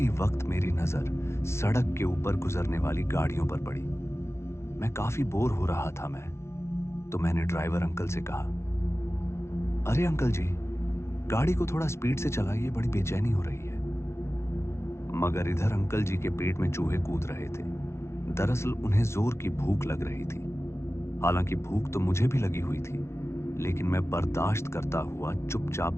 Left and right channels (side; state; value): right; late; 0.13 ms